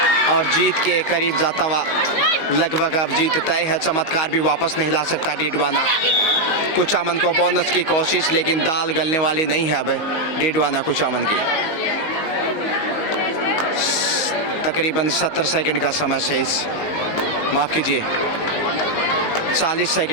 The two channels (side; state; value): right; late; 19 ms